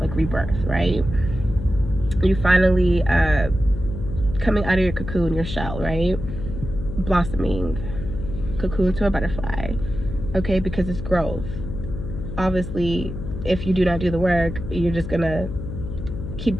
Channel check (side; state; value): left; noise; hum, 7 dB below the sound